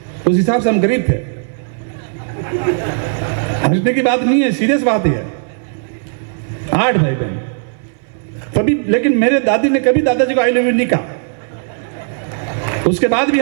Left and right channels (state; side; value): silent; left; 64 dB below the other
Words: उस हिसाब से हम गरीब थे। हंसने की बात नहीं है, सीरियस बात है। 8 भाई बहन तभी, लेकिन मेरे दादी ने कभी दादाजी को आई लव यू नहीं कहा। उसके बाद भी